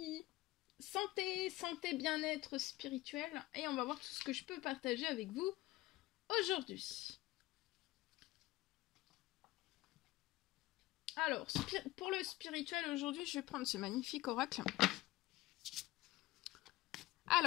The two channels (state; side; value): quieter; right; 18.1 dB